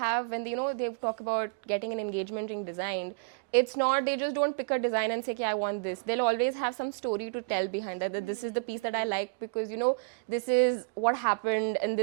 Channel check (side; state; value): left; quieter; 36.4 dB